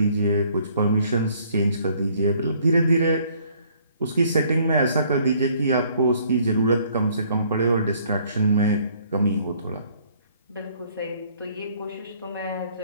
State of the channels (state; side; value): inverted; both; correlation -0.62